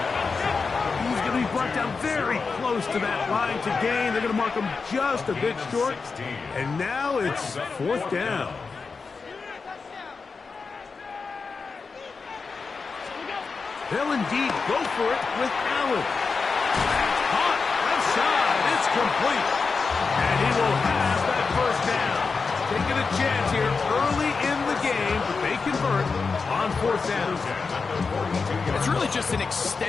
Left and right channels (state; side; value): quieter; right; 4.7 dB